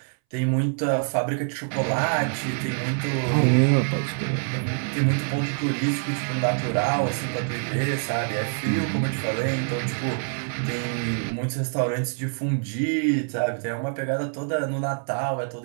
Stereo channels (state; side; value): silent; left; 61 dB below the other